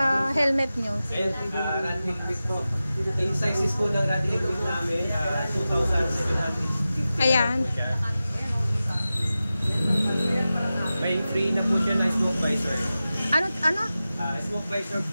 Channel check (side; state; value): both; inverted; correlation -0.94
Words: helmet nyo? Rad helmet po. Yung sizes po ng rad helmet namin, 2,750. Ayan. May free na po siya na smoke visor. Ano? Smoke visor